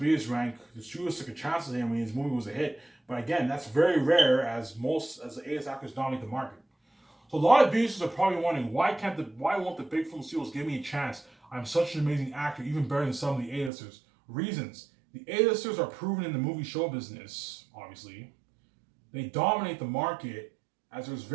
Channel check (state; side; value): drops out; left; at 13.7 s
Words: rank. The studios took a chance on him when his movie was a hit. But again, that's very rare, as the A-list actors dominate the market. So a lot of B-listers are probably wondering, why won't the big film studios give me a chance? I'm such an amazing actor, even better than some of the A-listers. Reasons. The A-listers are proven in the movie show business, obviously. They dominate the market, as there's